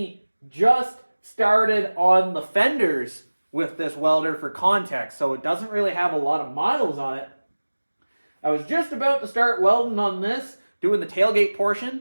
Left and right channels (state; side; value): inverted; both; correlation -1.00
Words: just started on the fenders with this welder for context, so it doesn't really have a lot of miles on it. I was just about to start welding on this, doing the tailgate